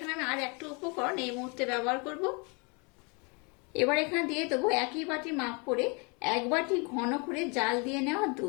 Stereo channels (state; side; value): quieter; right; 32.1 dB